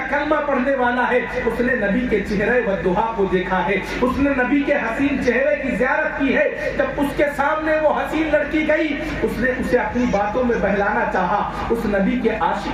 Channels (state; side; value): identical; both; correlation 1.00